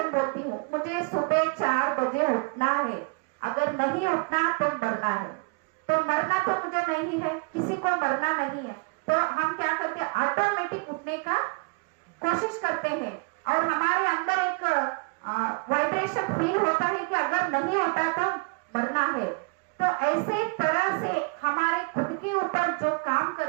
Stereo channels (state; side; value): quieter; left; 31.6 dB